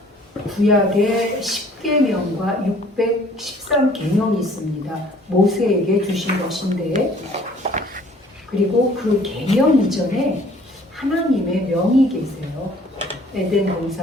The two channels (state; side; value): normal; both; correlation 0.56